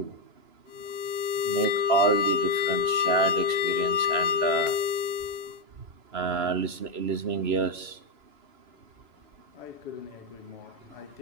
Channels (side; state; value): left; late; 3.0 ms